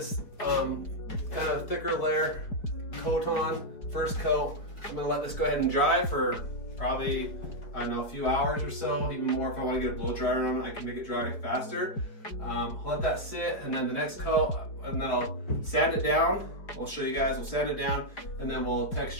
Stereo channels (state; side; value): late; right; 4.7 ms